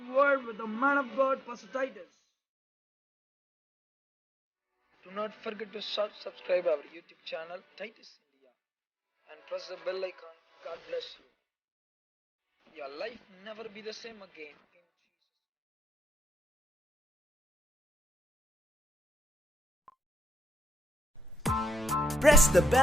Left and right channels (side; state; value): both; normal; correlation 0.82